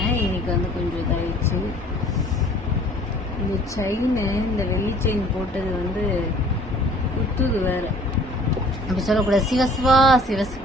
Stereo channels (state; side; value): normal; both; correlation 0.53